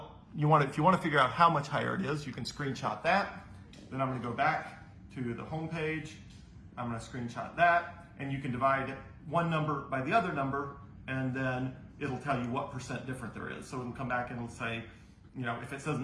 if you want to figure out how much higher it is, you can screenshot that. Then I'm going to go back to the home page. I'm going to screenshot that, and you can divide one number by the other number, and then it'll tell you what percent different there is. So it'll come back and it'll say, if it says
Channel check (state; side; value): identical; both; correlation 1.00